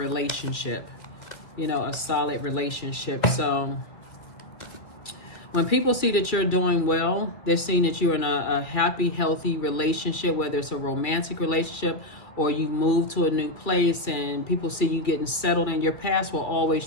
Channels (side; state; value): right; late; 2.4 ms